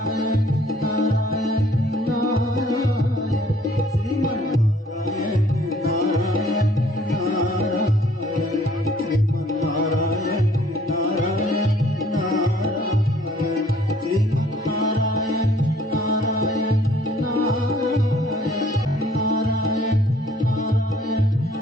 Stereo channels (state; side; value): normal; both; correlation 0.59